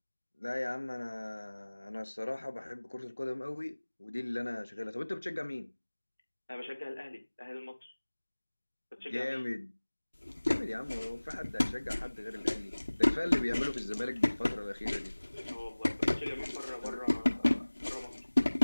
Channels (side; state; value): both; inverted; correlation -1.00